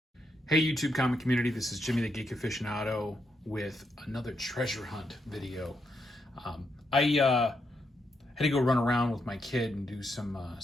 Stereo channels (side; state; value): both; normal; correlation 0.80